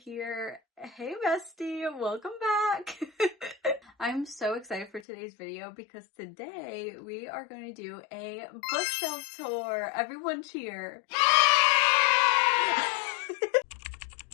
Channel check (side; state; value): right; drops out; at 5.1 s